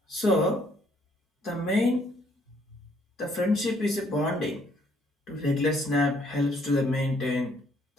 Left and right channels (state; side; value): normal; both; correlation 0.66